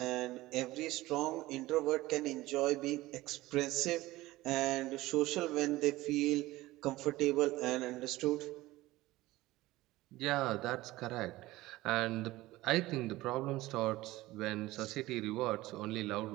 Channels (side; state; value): left; quieter; 18.1 dB